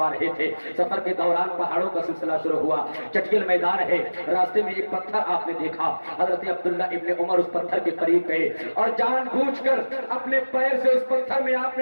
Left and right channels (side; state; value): both; inverted; correlation -1.00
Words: رہے تھے، سفر کے دوران پہاڑوں کا سلسلہ شروع ہوا، چٹیل میدان ہے، راستے میں ایک پتھر آپ نے دیکھا۔ حضرت عبداللہ ابن عمر اس پتھر کے قریب گئے اور جان بوجھ کر اپنے پیر سے اس پتھر میں آپ نے